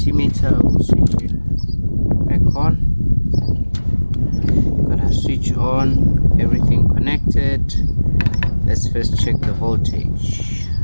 we'll switch it back on. Gonna switch on, everything connected. Let's first check the voltage.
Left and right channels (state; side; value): inverted; both; correlation -1.00